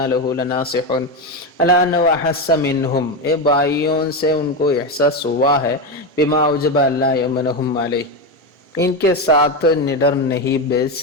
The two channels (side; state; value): both; normal; correlation 0.13